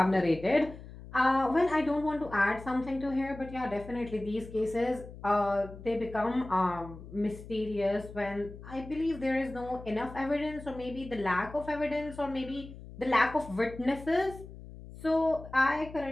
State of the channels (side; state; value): left; noise; hum, 15 dB below the sound